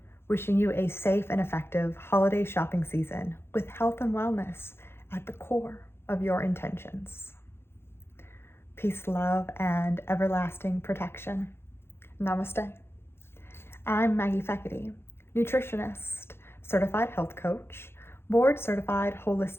Wishing you a safe and effective holiday shopping season with health and wellness at the core of your intentions. Peace, love, and everlasting protection. Namaste. I'm Maggie Feckety, nutritionist, certified health coach, board certified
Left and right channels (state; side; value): late; right; 0.12 ms